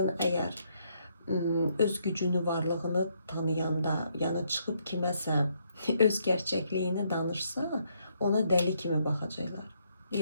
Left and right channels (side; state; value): both; inverted; correlation -0.74